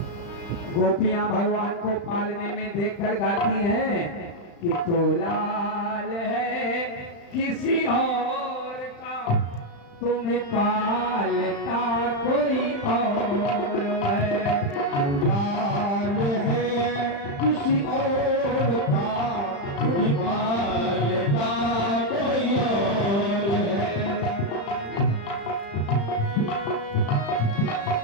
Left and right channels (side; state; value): right; late; 35 ms